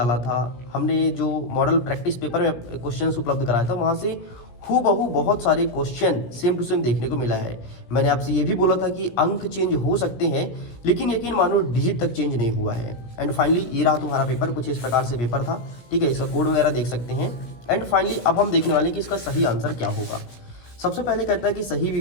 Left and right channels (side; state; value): right; late; 17 ms